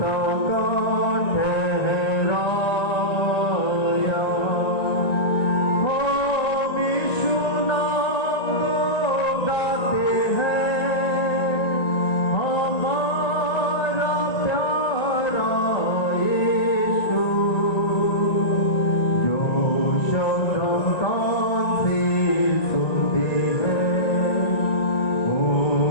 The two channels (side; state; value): right; late; 1.9 ms